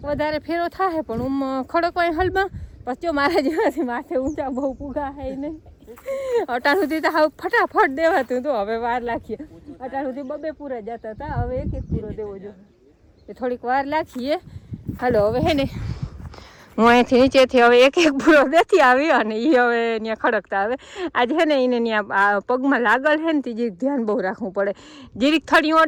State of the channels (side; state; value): both; identical; correlation 1.00